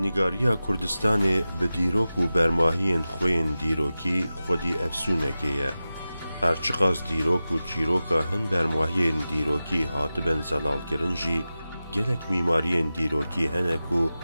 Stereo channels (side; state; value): both; inverted; correlation -0.94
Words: کوردستانê bi dîrok û bermahiyên xwe yên dîrokî xwedî efsûnekê ye. Her çi qas dîrok û çîroka hin bermahiyên dîrokî hatibin zelalkirin jî gelek mîmariyên dîrokî hene ku